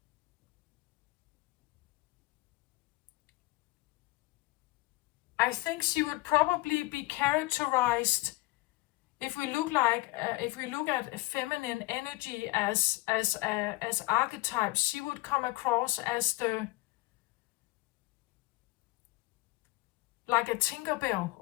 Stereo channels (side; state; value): right; quieter; 20.7 dB